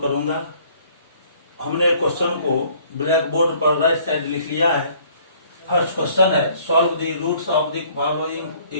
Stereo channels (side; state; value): both; inverted; correlation -0.58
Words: करूंगा। हमने क्वेश्चन को ब्लैक बोर्ड पर राइट साइड लिख लिया है। फर्स्ट क्वेश्चन है, solve the roots of the following